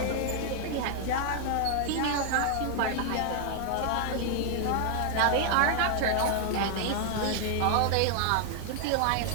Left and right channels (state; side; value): different; both; correlation 0.00